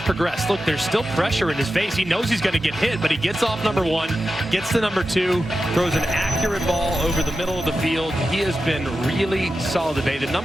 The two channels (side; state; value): both; normal; correlation 0.91